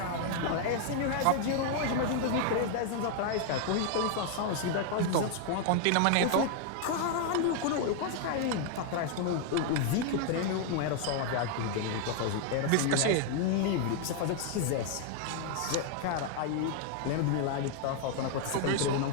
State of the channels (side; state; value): both; different; correlation 0.00